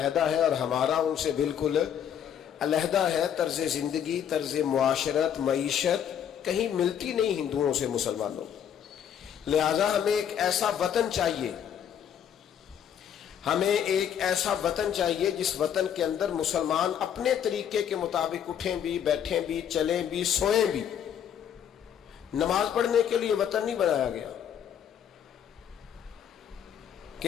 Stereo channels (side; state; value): right; quieter; 9.1 dB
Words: ہے اور ہمارا ان سے بالکل علیحدہ ہے. طرز زندگی، طرز معاشرت، معیشت کہیں ملتی نہیں ہندوؤں سے مسلمانوں. لہذا ہمیں ایک ایسا وطن چاہیے، ہمیں ایک ایسا وطن چاہیے جس وطن کے اندر مسلمان اپنے طریقے کے مطابق اٹھیں بھی، بیٹھیں بھی، چلیں بھی، سوئیں بھی. نماز پڑھنے کے لیے وطن نہیں بنایا گیا